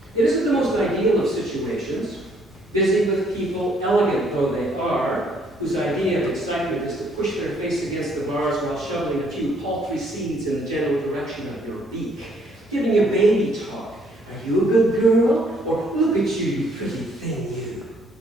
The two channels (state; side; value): normal; both; correlation 0.66